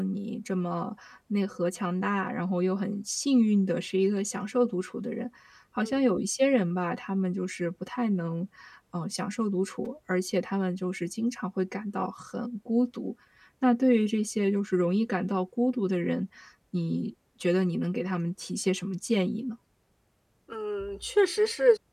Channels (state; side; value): identical; both; correlation 1.00